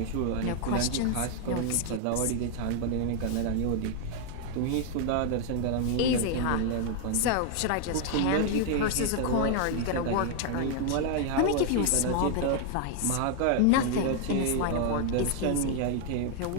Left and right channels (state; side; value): different; both; correlation 0.00